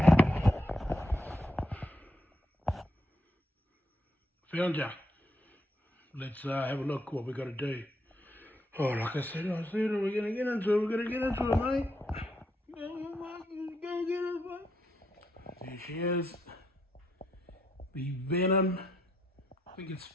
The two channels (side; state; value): both; normal; correlation 0.78